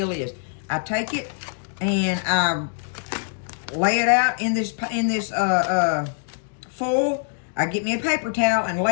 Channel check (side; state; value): right; silent; digital silence